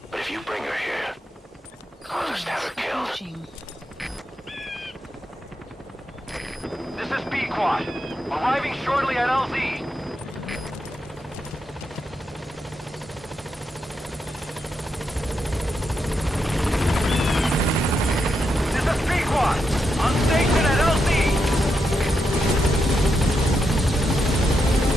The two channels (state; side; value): normal; both; correlation 0.84